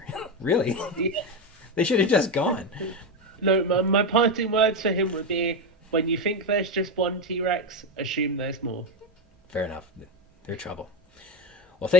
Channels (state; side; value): normal; both; correlation 0.11